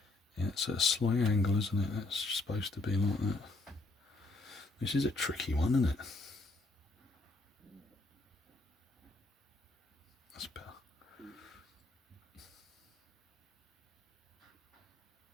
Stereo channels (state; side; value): quieter; right; 3.2 dB